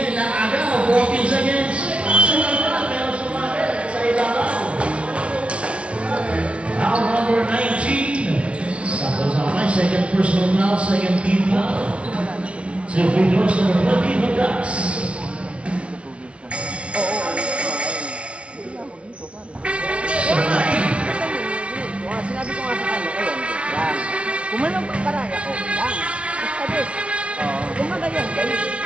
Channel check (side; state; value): left; late; 0.061 ms